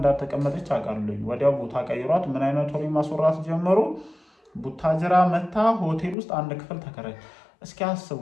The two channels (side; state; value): right; drops out; at 6.2 s